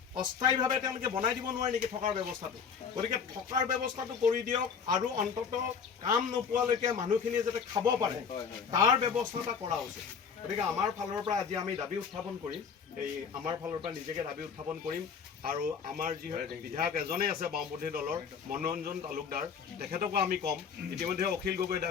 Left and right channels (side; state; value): right; quieter; 6.4 dB